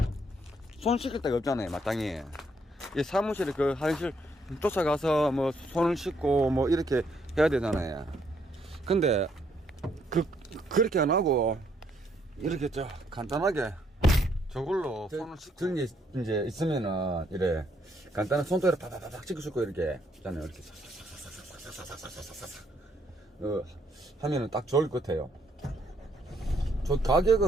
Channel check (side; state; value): both; normal; correlation 0.71